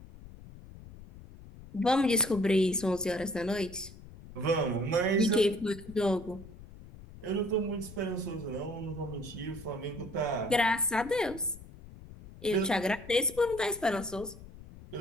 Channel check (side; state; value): left; noise; rumble, 17 dB below the sound